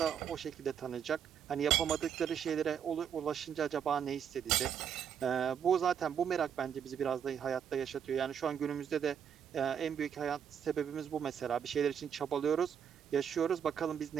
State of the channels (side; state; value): left; quieter; 8.2 dB